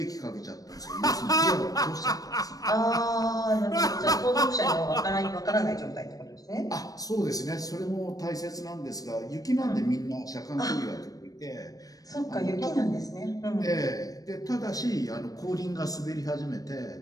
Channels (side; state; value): right; late; 0.18 ms